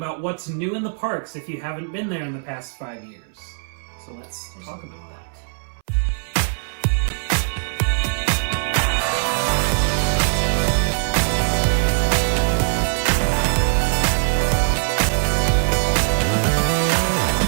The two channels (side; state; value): left; silent; 63 dB below the other